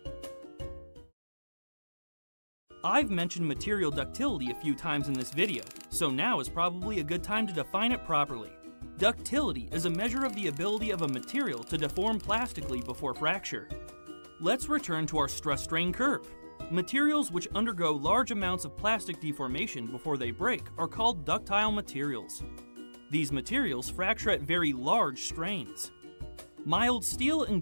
I've mentioned material ductility a few times in this video, so now is probably a good time to define it properly. Ductility is a measure of the ability of a material to deform plastically before fracture. Let's return to our stress-strain curve. Materials which undergo large amounts of plastic deformation before they break are called ductile materials. These materials fracture at very large strains. Mild steel and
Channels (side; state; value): both; inverted; correlation -1.00